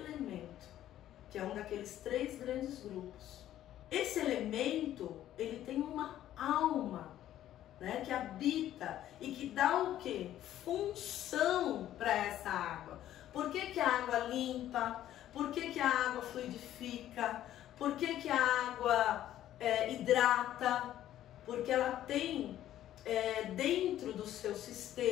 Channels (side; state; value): right; quieter; 12.4 dB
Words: que é um daqueles 3 grandes grupos. Esse elemento, ele tem uma alma, né, que habita e que dá o quê? Função para essa água. Por que a água limpa? Por que a água fluidifica? Por que a água hidrata? Porque ela tem dentro do seu